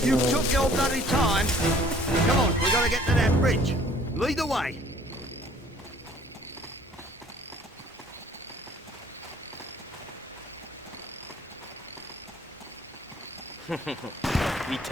you took your bloody time. Come on, we gotta get to that bridge. Lead the way.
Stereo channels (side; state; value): both; normal; correlation 0.56